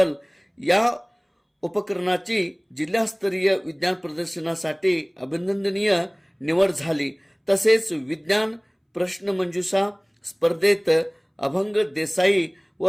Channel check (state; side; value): identical; both; correlation 1.00